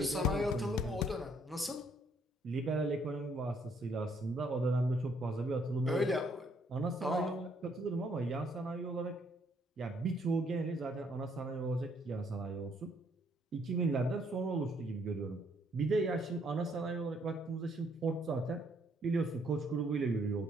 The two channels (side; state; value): both; normal; correlation 0.68